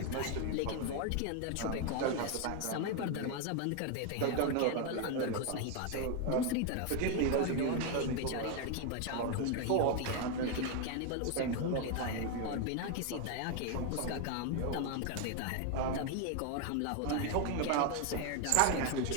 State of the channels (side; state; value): both; different; correlation 0.01